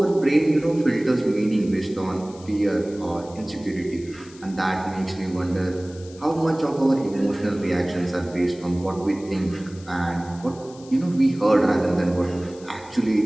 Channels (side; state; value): left; noise; hiss, 22 dB below the sound